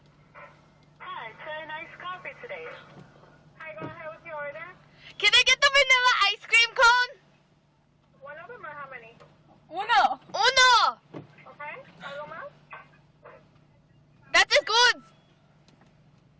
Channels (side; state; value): both; identical; correlation 1.00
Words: Hi, it's a nice coffee today. Hi, go ahead with your order. Can I get the vanilla ice cream cone? One of them or how many? Uno. Uno! Okay, algo más? That is good!